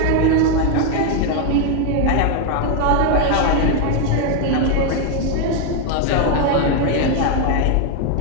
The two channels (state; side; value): different; both; correlation 0.01